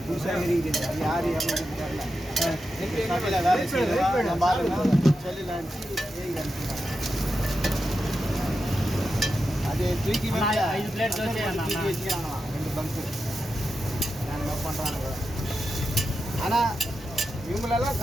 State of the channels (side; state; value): both; normal; correlation 0.89